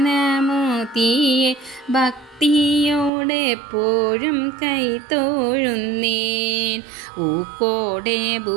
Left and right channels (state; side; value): drops out; left; at 3.1 s